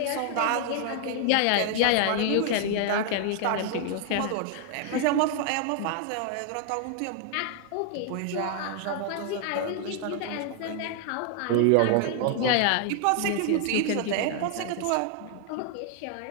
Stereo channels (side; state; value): both; different; correlation 0.00